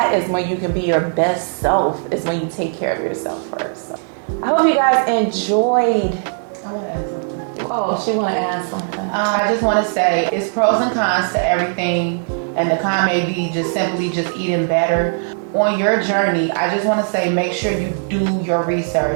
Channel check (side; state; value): left; silent; digital silence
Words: is when you can be your best self, is when you take care of yourself first. So I hope you guys enjoyed. I want to add something. Oh, she want to add something. I just want to say it's pros and cons to everything, and the con may be just simply just eating better. On your journey, I just want to say make sure you do your